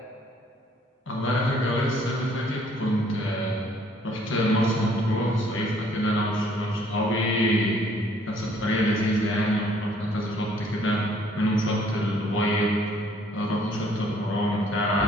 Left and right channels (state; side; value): normal; both; correlation 0.61